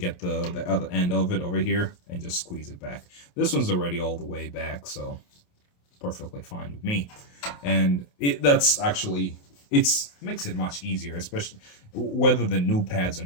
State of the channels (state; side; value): late; right; 28 ms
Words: the other end of it over here and just squeeze it back. This one's already all the way back, so perfectly fine with me. And that's actually, it makes it much easier, especially whether the new pads or